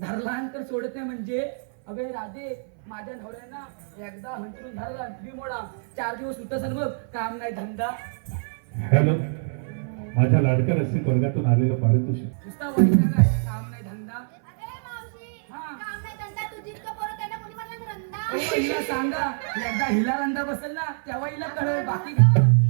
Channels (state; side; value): silent; left; 60 dB below the other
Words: तर सोडत नाही म्हणजे, अगं राधे माझ्या नवऱ्याना एकदा हंतरून धरला मोडा, 4 दिवस सुद्धा सर बघ, काम नाही धंदा. हॅलो, माझ्या लाडक्या रसिक वर्गातून आलेलं पारितोषिक. नुसता वैताग आहे, काम नाही धंदा. हिला सांगा, एकदा हिला रंदा बसेल ना तेव्हा हिला कळेल, बाकी